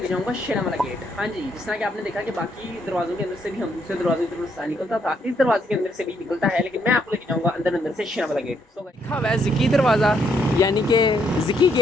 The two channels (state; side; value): normal; both; correlation 0.73